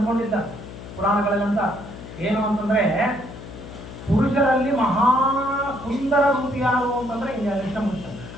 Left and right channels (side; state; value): left; noise; hum, 13 dB below the sound